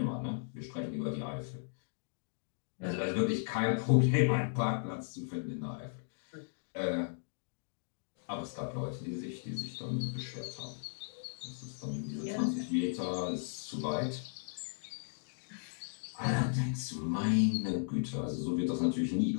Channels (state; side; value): silent; right; digital silence